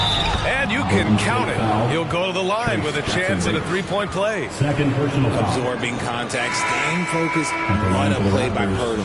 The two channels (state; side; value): identical; both; correlation 1.00